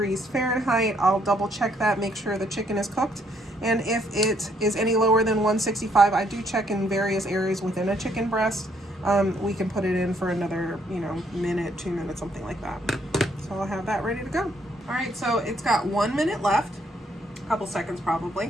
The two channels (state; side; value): normal; both; correlation 0.69